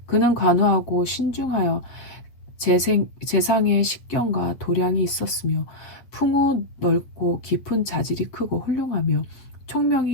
그는 관우하고 신중하여 재상의 식견과 도량이 있었으며 풍우 넓고 깊은 자질이 크고 훌륭하며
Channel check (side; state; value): right; late; 8.7 ms